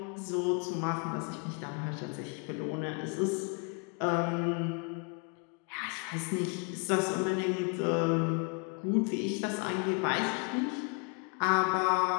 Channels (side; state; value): right; quieter; 34.4 dB